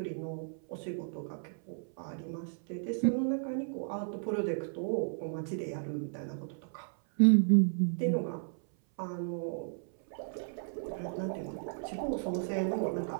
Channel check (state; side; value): silent; left; 55 dB below the other